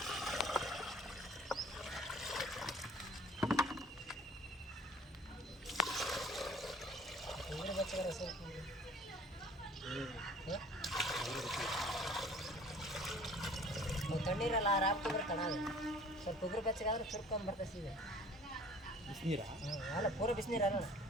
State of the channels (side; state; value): both; normal; correlation 0.50